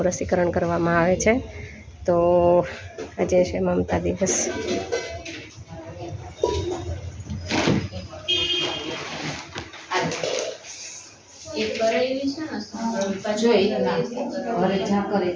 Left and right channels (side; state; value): both; identical; correlation 1.00